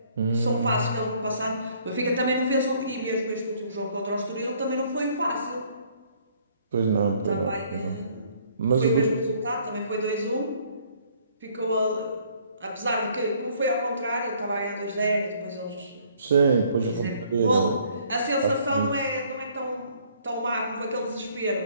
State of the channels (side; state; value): both; inverted; correlation -0.61